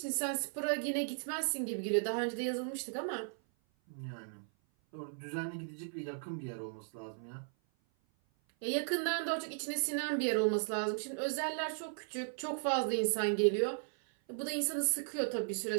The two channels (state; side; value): silent; left; 54 dB below the other